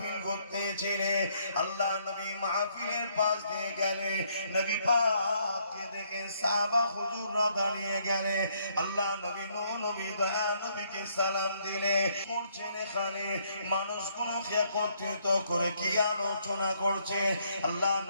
করতেছিলেন। আল্লাহ নবী মাহফিলের পাশ দিয়ে গেলে নবী পাককে দেখে সাহাবা হুজুররা দাঁড়িয়ে গেলে, আল্লাহ নবী নবী দয়া নবীকে সালাম দিলে। করছেন এখানে মানুষগুলোকে একত্রিত করে কি আলোচনা করছে, আল্লাহ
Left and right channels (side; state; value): both; inverted; correlation -0.70